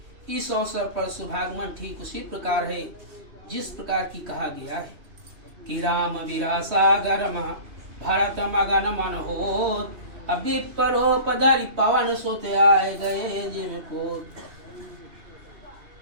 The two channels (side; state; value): left; late; 3.1 ms